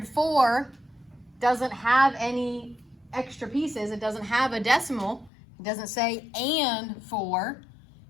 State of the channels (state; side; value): drops out; right; at 5.3 s